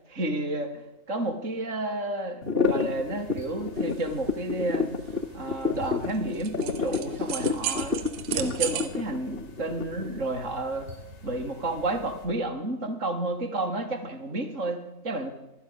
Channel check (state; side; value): late; left; 4.0 ms